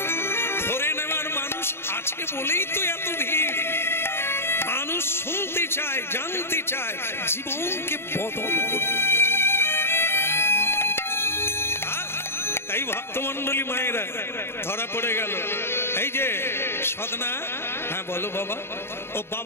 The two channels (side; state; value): right; late; 0.12 ms